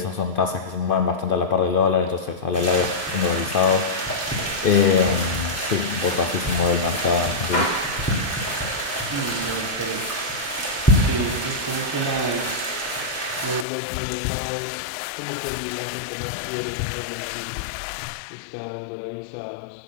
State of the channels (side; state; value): right; drops out; at 13.7 s